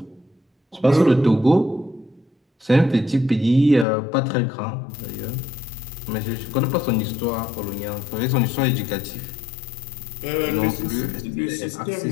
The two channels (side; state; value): right; drops out; at 3.9 s